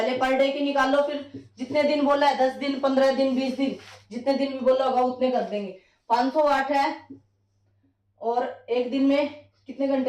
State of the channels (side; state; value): both; identical; correlation 1.00